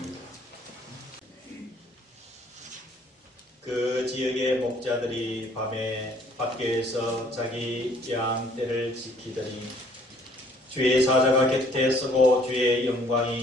그 지역의 목자들이 밤에 밖에서 자기 양떼를 지키더니 주의 사자가 곁에 서고 주의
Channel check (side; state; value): both; normal; correlation 0.60